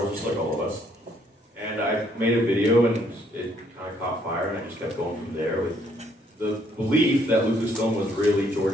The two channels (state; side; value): normal; both; correlation 0.67